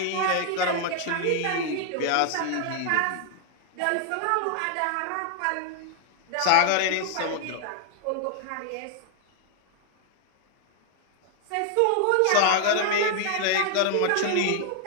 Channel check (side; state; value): both; different; correlation 0.00